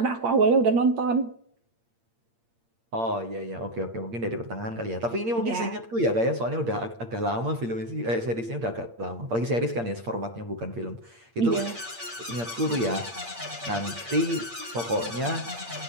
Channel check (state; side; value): late; left; 8.7 ms